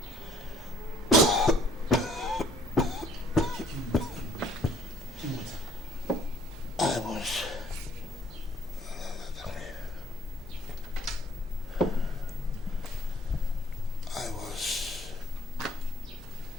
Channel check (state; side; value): normal; both; correlation 0.59